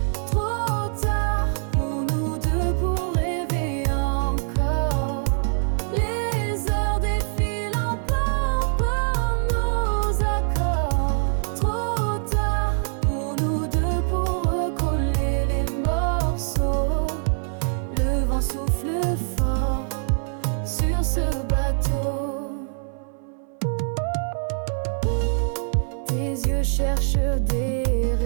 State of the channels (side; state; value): left; silent; 57 dB below the other